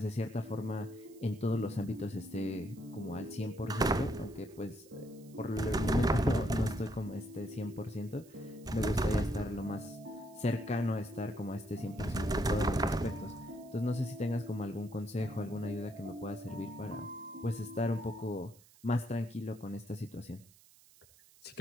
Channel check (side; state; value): right; noise; hiss, 25 dB below the sound